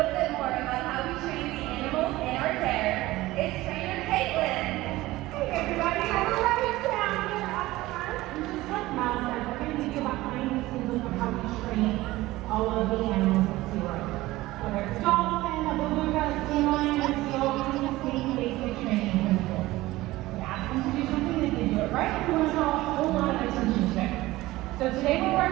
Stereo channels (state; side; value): quieter; left; 18.1 dB